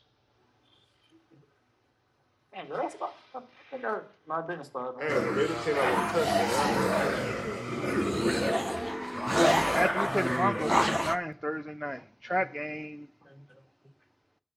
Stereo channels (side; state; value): both; identical; correlation 1.00